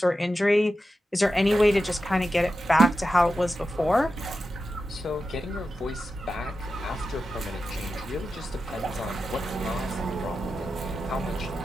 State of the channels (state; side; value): normal; both; correlation 0.91